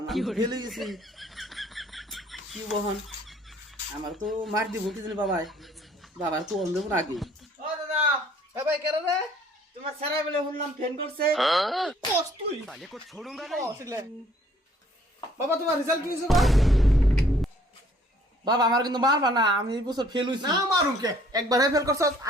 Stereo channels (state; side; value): normal; both; correlation 0.60